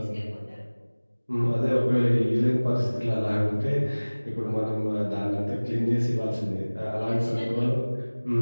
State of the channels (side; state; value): both; inverted; correlation -1.00